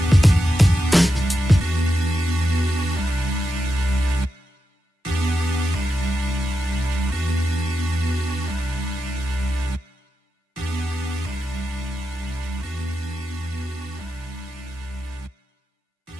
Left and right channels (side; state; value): both; normal; correlation 0.88